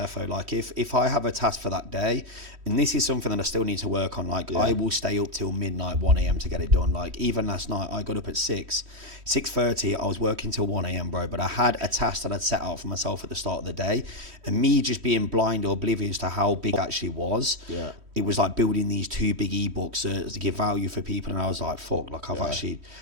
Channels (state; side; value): late; left; 3.1 ms